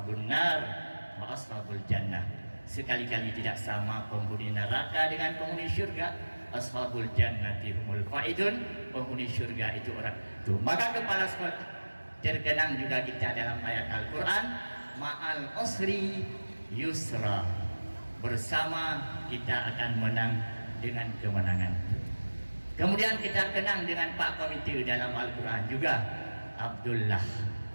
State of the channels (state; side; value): inverted; both; correlation -1.00